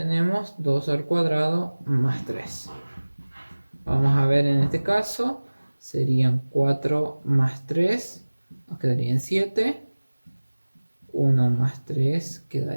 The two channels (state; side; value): inverted; both; correlation -1.00